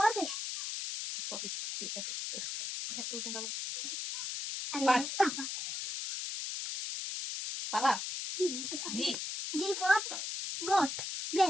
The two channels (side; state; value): left; noise; hiss, 4 dB below the sound